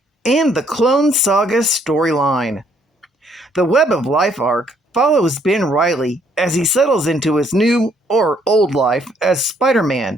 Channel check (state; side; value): normal; both; correlation 0.67